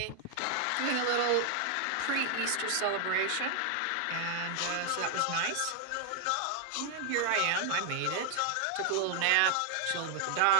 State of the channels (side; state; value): both; different; correlation 0.00